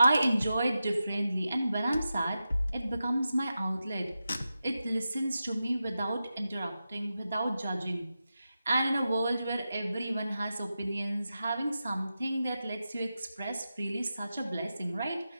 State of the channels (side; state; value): both; inverted; correlation -0.91